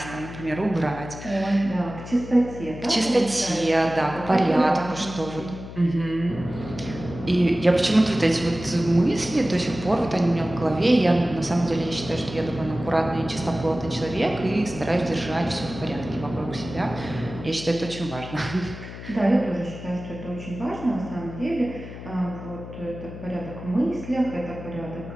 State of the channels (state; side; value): noise; left; hum, 12 dB below the sound